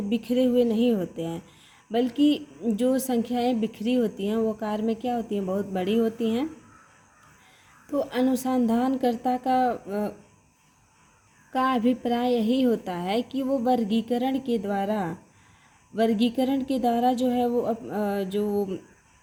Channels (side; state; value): both; identical; correlation 1.00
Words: हैं, बिखरे हुए नहीं होते हैं, बल्कि जो संख्याएं बिखरी होती हैं वो आकार में क्या होती हैं, बहुत बड़ी होती हैं। तो अनुसंधानकर्ता का अभिप्राय यही होता है कि वो वर्गीकरण के द्वारा जो है वो जो